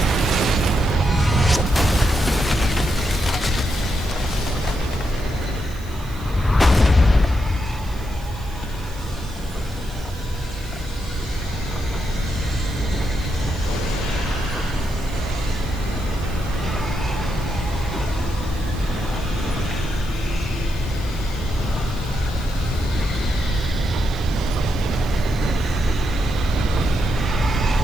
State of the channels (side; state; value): right; noise; hiss, 22 dB below the sound